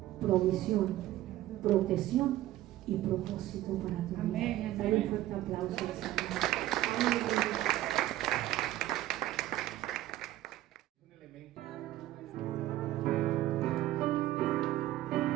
provisión, protección y propósito para tu vida. Amén. Dale un fuerte aplauso al Señor. Amén. Un elemento.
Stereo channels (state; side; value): quieter; left; 14.7 dB